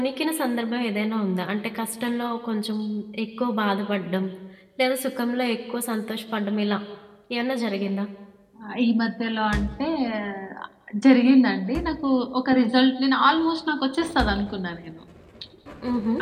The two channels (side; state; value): both; identical; correlation 1.00